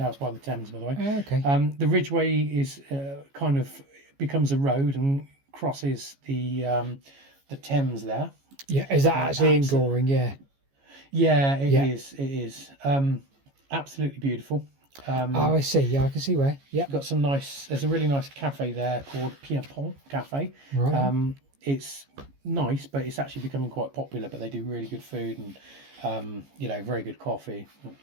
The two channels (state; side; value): late; left; 14 ms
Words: by the Thames, by the way. Okay. The Ridgeway is kind of becomes a road and crosses the Thames there. Yeah, is that actually in Goring? Yeah. Yeah, it is. It is absolutely beautiful. I see. Yeah, I can see where. Yeah. Got some nice. There's a really nice cafe there called Pierpont Cafe. Right. It's nice, but it's actually becoming quite popular. But they do really good food and very good coffee.